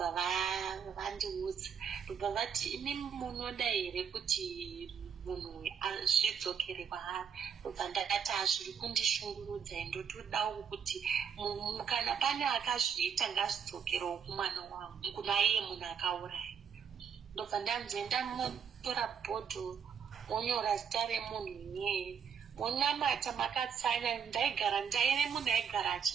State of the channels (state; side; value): quieter; left; 7.3 dB